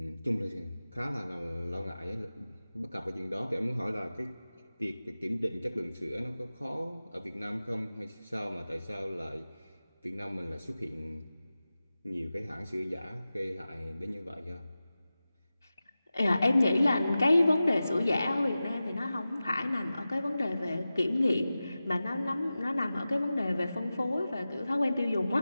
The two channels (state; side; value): inverted; both; correlation -0.95